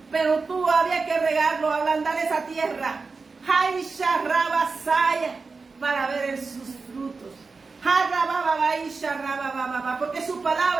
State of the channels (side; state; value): left; quieter; 4.3 dB